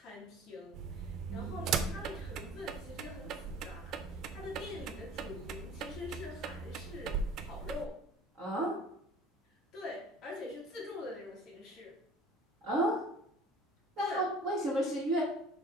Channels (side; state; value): both; normal; correlation 0.46